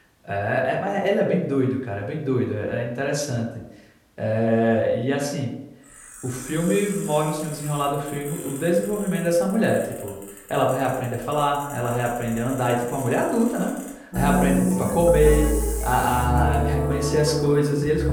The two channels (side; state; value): both; identical; correlation 1.00